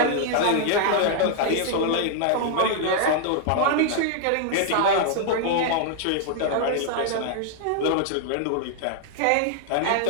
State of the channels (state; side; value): different; both; correlation 0.00